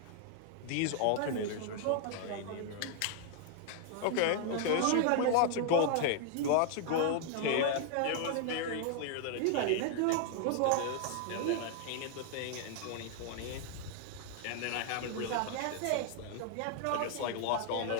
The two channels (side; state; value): both; different; correlation 0.00